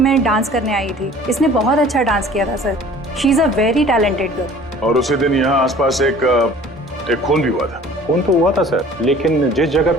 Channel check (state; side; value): normal; both; correlation 0.48